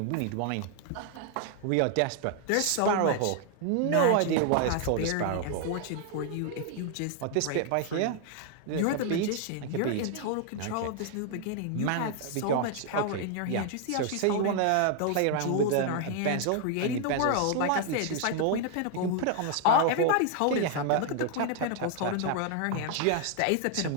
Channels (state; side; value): different; both; correlation 0.00